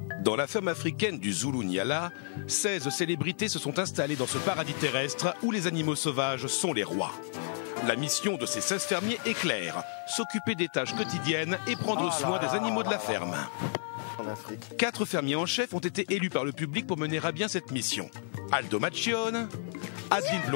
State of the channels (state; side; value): silent; right; 57 dB below the other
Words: Dans la ferme africaine du Zulu-Nyala, 16 célébrités se sont installées dans ce paradis terrestre où les animaux sauvages sont les rois. La mission de ces 16 fermiers est claire, s'occuper des tâches quotidiennes et prendre soin des animaux de la ferme. 4 fermiers en chef ont été élus par le public pour mener à bien cette mission. Aldo Macchione, Adeline